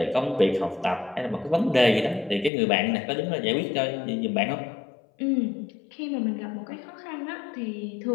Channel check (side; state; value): right; drops out; at 2.5 s